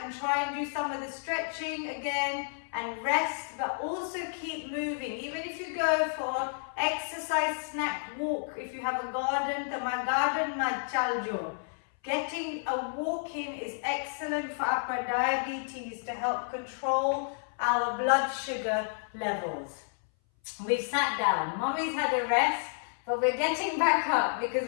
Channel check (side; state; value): right; silent; 57 dB below the other